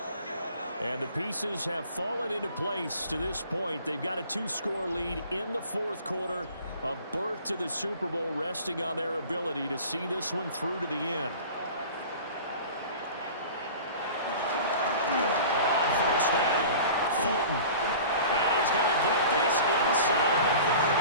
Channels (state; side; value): inverted; both; correlation -0.42